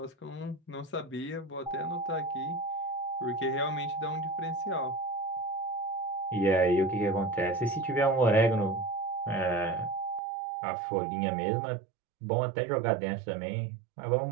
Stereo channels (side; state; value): left; drops out; at 10.2 s